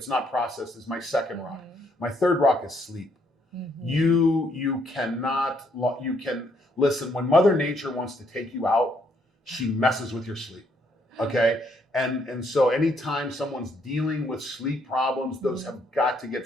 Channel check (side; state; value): both; normal; correlation 0.71